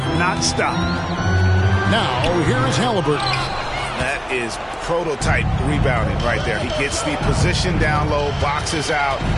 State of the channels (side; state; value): both; identical; correlation 1.00